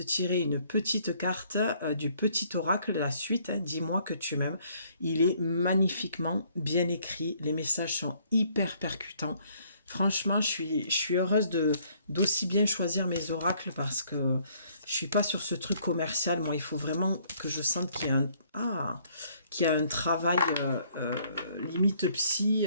tirer une petite carte du petit oracle, la suite, hein, Dis-moi que tu m'aimes. Il est magnifiquement bien écrit. Les messages sont hyper percutants. Franchement, je suis heureuse d'aussi bien choisir mes oracles parce que je suis pas sur ce truc commercial. Moi, il faut vraiment que je sente qu'il y a un travail limite psy,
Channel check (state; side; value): inverted; both; correlation -0.64